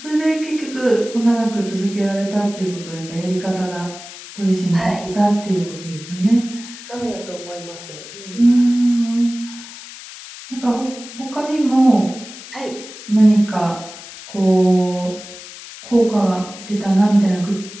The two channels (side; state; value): left; noise; hiss, 15 dB below the sound